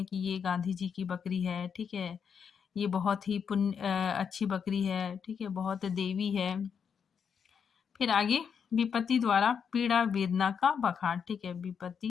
कि ये गांधी जी की बकरी है। ठीक है, ये बहुत ही अच्छी बकरी है। ठीक है, बहुत देवी है। फिर आगे विपत्ति द्वारा पीड़ा वेदना का बखान। ठीक है,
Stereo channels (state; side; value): quieter; right; 6.9 dB